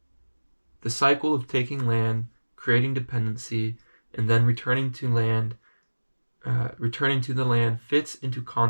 The cycle of taking land, creating dependency, and then returning to the land fits into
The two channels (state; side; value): inverted; both; correlation -1.00